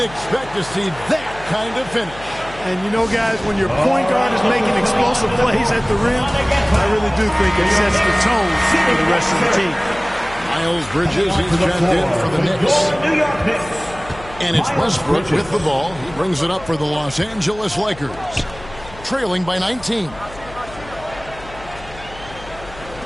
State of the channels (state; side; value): noise; left; hum, 17 dB below the sound